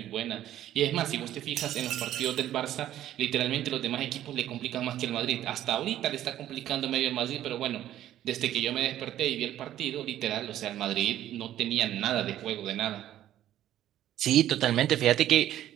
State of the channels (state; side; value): quieter; left; 12.4 dB